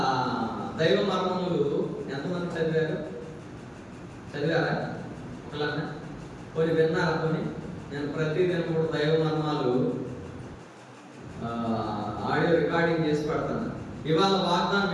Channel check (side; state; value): both; identical; correlation 1.00